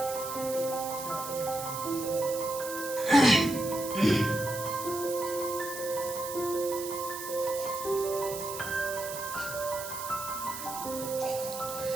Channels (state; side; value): noise; right; hiss, 8 dB below the sound